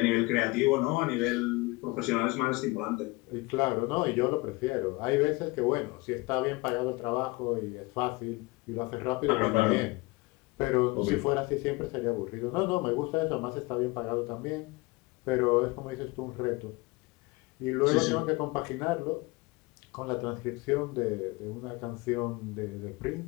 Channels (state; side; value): quieter; right; 24.0 dB